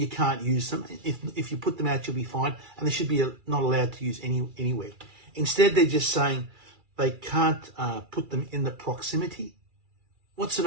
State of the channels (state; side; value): late; left; 2.3 ms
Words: can't use them. If you put them out, you'll be fined, and they should be not allowed to use anywhere. Instead, they're just saying they can't put them in the proximity. What sort